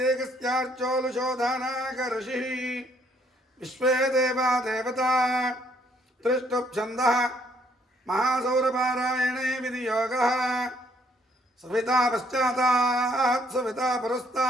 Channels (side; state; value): both; normal; correlation 0.67